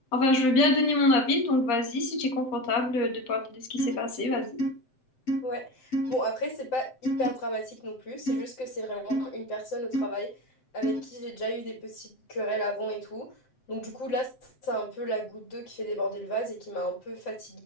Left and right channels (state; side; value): late; right; 7.7 ms